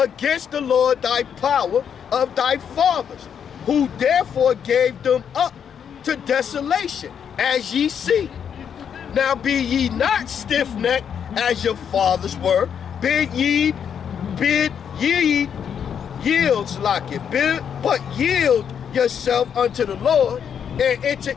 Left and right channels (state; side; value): quieter; right; 7.9 dB